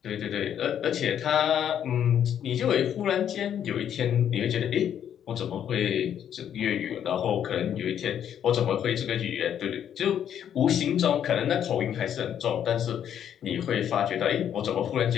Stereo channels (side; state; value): right; quieter; 9.5 dB